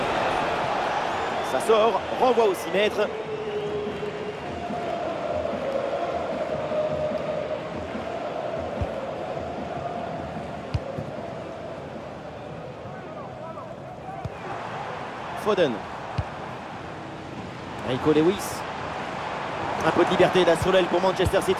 Ça sort, renvoi au 6 mètres. Foden. Rico Lewis. Un peu de liberté d'Assolel pour Manchester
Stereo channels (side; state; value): both; identical; correlation 1.00